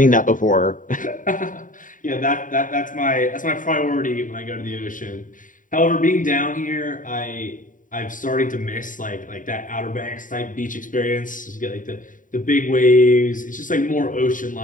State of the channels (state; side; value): late; right; 0.38 ms